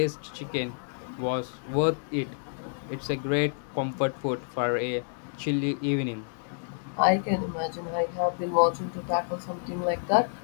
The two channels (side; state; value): right; silent; 57 dB below the other